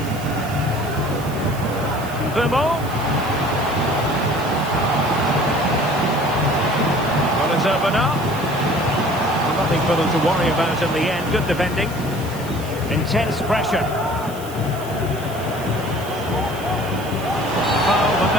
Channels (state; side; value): noise; right; hiss, 17 dB below the sound